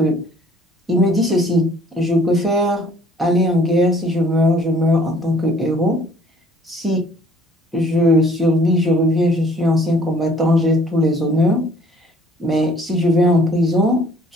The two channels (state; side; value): normal; both; correlation 0.57